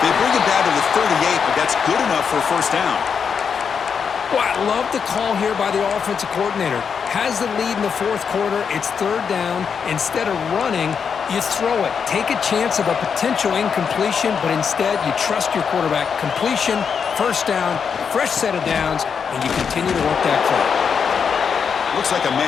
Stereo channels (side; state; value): right; quieter; 6.5 dB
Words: They bring him down to the 38, but that's good enough for a first down. Well, I love the call here by the offensive coordinator. Has the lead in the 4th quarter. It's 3rd down. Instead of running, you throw it. Take a chance of a potential incompletion, but instead you trust your quarterback. Completion, first down, fresh set of downs, and you continue to work that play. Looks like a